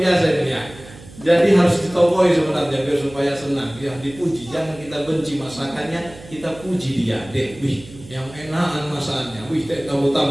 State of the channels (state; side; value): noise; right; hum, 19 dB below the sound